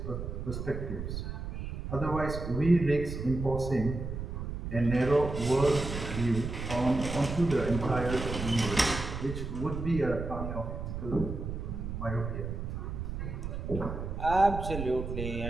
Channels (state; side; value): noise; right; rumble, 5 dB below the sound